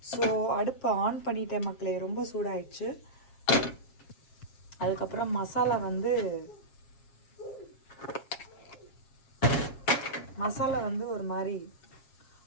ஸோ அடுப்பை ஆன் பண்ணிட்டேன் மக்களே, ரொம்ப சூடாயிடுச்சு. அதுக்கப்புறம் மசாலா ஒரு மாதிரி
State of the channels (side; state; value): right; late; 7.4 ms